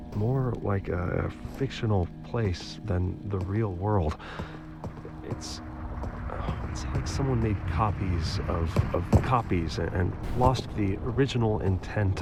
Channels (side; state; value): both; identical; correlation 1.00